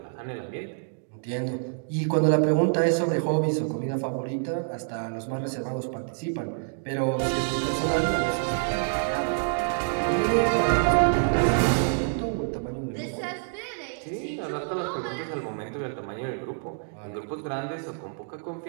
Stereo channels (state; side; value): silent; left; digital silence